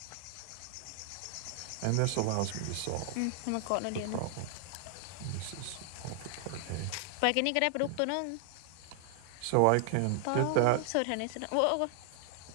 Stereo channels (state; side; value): different; both; correlation -0.01